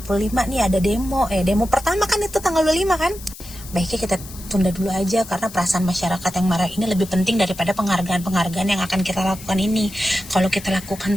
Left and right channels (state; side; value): noise; left; hiss, 16 dB below the sound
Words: nih ada demo, demo pertama kan itu tanggal 25 kan. Baiknya kita tunda dulu aja karena perasaan masyarakat yang marah ini lebih penting daripada penghargaan-penghargaan yang akan kita lakukan ini. Kalau kita lakukan